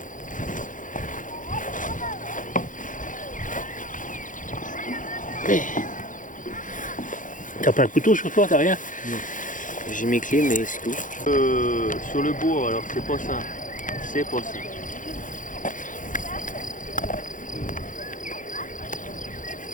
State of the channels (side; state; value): right; late; 0.38 ms